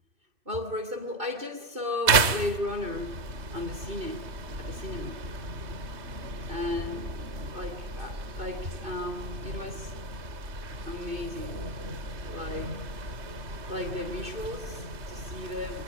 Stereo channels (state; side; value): late; left; 2.6 ms